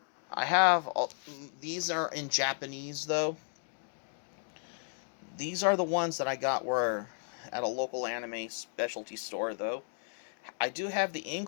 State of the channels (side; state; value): right; silent; 55 dB below the other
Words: I have... These are in Japanese, though. These are the ones that I got were at a local anime specialty store, though. I do have the